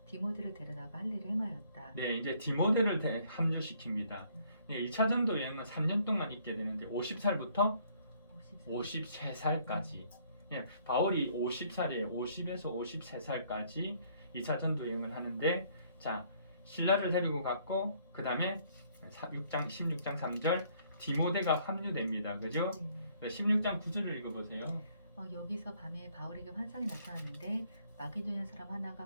디모데를 데려다가 할 일을 행하였다. 네, 이제 디모데를 합류시킵니다. 네, 2차 전도 여행은 3년 동안 있게 되는데 50살부터 53살까지. 예, 바울이 50살이에요. 50에서 53살까지 2차 전도 여행을 하는데, 자, 신라를 데리고 갔고, 그 다음에 16장 3절 디모데가 합류됩니다. 그죠? 16장 9절을 읽어보세요. 여기서 밤에 바울에게 환상이 나타났는데 마게도냐 사람 하나가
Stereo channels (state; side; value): inverted; both; correlation -0.64